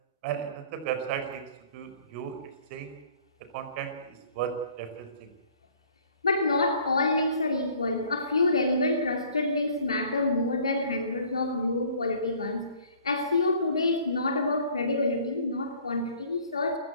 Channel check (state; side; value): inverted; both; correlation -0.54